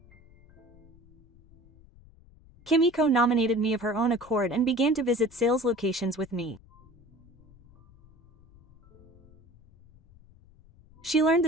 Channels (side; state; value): left; noise; rumble, 27 dB below the sound